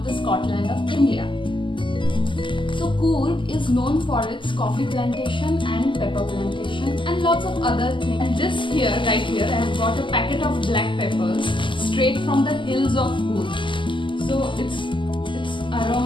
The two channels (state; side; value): late; right; 0.24 ms